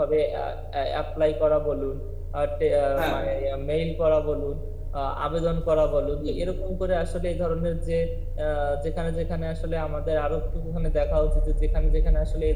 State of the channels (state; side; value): identical; both; correlation 1.00